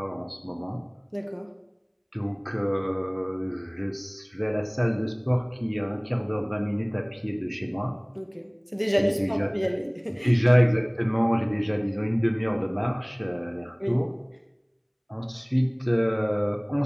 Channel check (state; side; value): identical; both; correlation 1.00